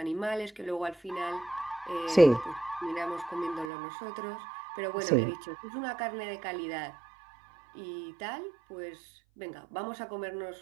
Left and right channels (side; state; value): left; drops out; at 3.7 s